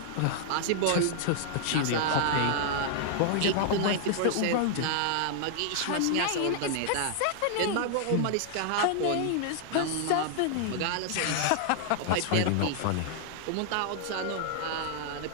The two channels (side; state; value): both; different; correlation -0.01